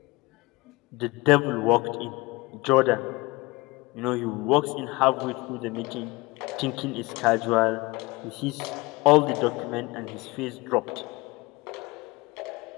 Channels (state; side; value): quieter; right; 23.2 dB